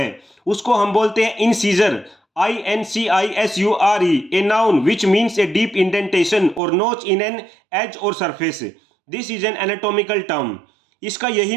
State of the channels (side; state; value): left; drops out; at 6.6 s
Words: उसको हम बोलते हैं incisor, INCISURE, a noun which means a deep indentation और नोच इन एन एज और surface. This is an anatomical term. इसका यही